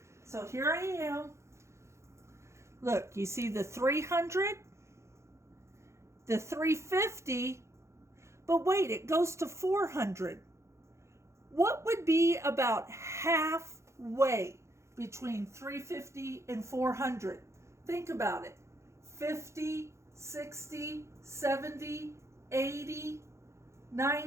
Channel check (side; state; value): left; late; 0.14 ms